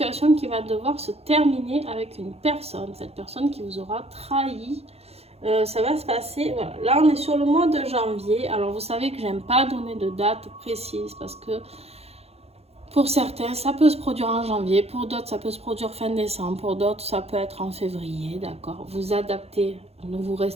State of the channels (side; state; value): left; late; 0.30 ms